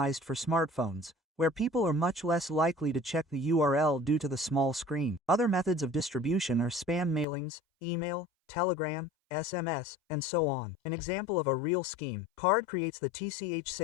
for smartphones, where people are much less likely to check the URL due to the small screen. Other methods of distribution are spam mailings, email, telegram, SMS, and so on. An example of a real scheme: Card creates the TCH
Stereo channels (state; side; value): drops out; right; at 7.2 s